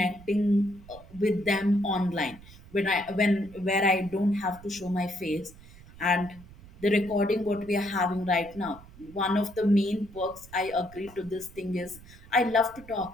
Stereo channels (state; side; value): noise; right; rumble, 20 dB below the sound